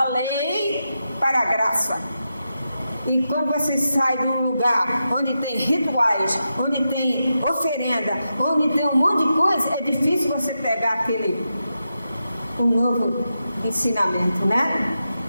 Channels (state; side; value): inverted; both; correlation -0.88